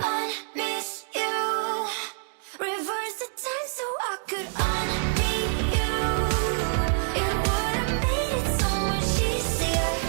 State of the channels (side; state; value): left; silent; digital silence